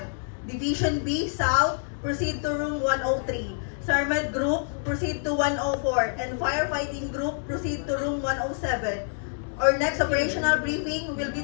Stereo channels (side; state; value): right; silent; digital silence